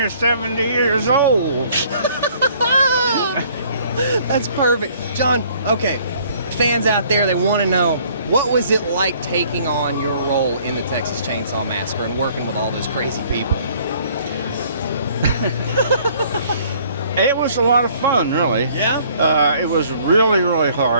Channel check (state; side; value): inverted; both; correlation -0.59